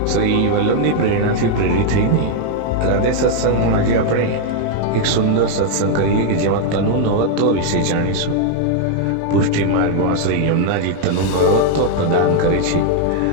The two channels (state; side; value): different; both; correlation 0.00